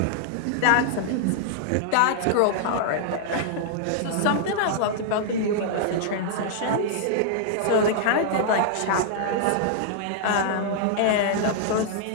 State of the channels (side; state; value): both; different; correlation -0.01